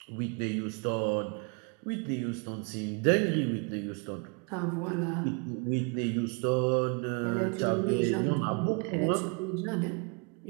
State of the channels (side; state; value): left; quieter; 35.1 dB